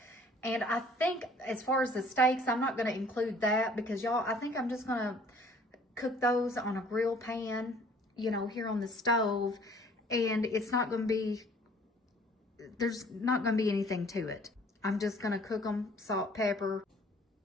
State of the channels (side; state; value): both; normal; correlation 0.55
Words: And I think as far as the steaks, I'm not going to include that because y'all, I think I'm just going to cook those on a grill pan, you know, here on the stove. And it's not going to be, there's not going to be anything to it. I'm just going to cook them, salt, pepper,